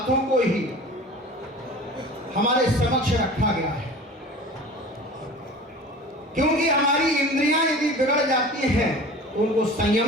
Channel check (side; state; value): both; normal; correlation 0.39